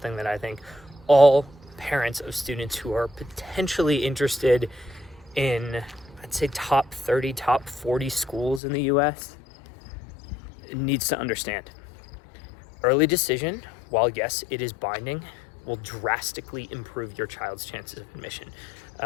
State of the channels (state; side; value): drops out; right; at 8.6 s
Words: that I think all parents of students who are potentially interested in, I'd say, top 30, top 40 schools in the US needs to understand. Early decision, while yes, it is binding, will drastically improve your child's chances of admission.